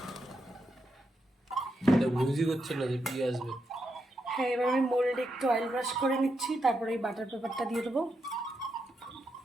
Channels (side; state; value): both; normal; correlation 0.83